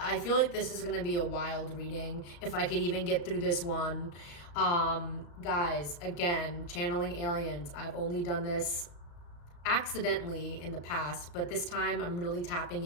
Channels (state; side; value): late; right; 34 ms